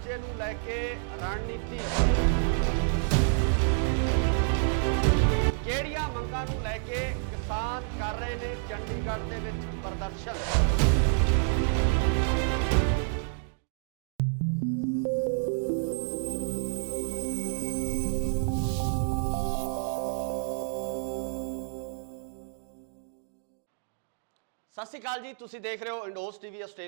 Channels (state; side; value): silent; left; digital silence